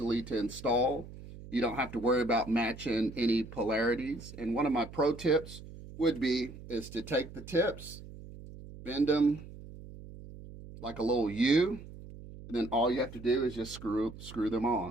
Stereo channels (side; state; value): right; noise; hum, 15 dB below the sound